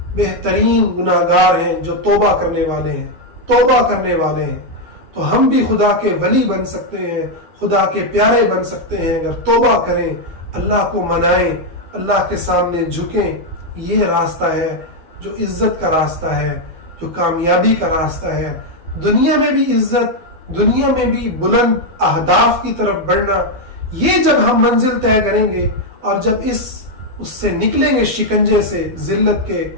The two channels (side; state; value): left; late; 12 ms